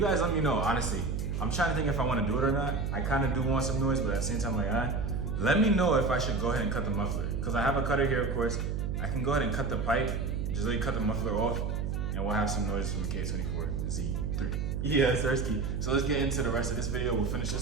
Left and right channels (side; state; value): right; noise; hum, 1 dB below the sound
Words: guys let me know, honestly. I'm trying to think if I wanna do it or not. I kinda do want some noise, but at the same time, like, let me know if I should go ahead and cut the muffler. Because I have a cutter here, of course. I can go ahead and cut the pipe, just really cut the muffler off, and we'll have some noise from the K24 Z3. Yeah, Sersky. So let's get into the rest of this video. We'll finish